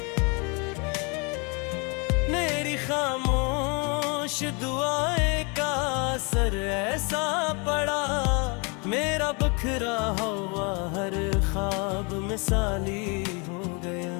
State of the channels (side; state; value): right; quieter; 31.8 dB